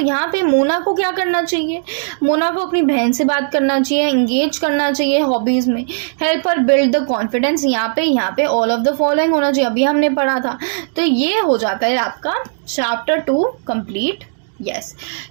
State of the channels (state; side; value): silent; left; digital silence